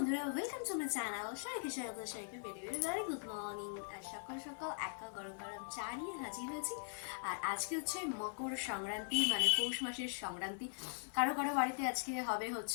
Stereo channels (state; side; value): silent; right; 50 dB below the other